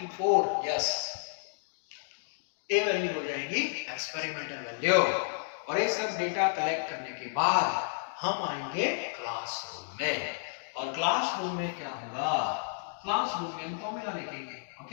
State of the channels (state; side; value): silent; right; digital silence